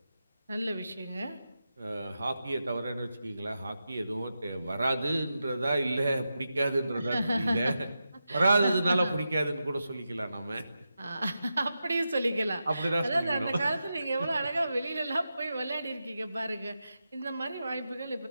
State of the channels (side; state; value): both; inverted; correlation -0.89